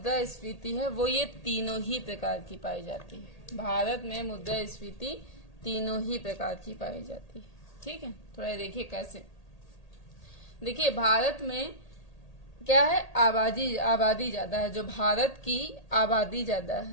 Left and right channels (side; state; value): right; late; 1.8 ms